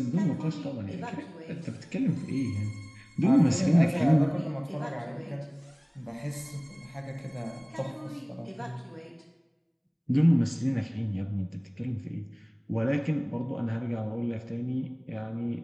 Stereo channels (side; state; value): both; identical; correlation 1.00